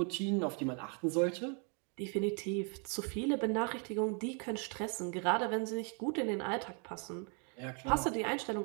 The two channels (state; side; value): quieter; left; 37.7 dB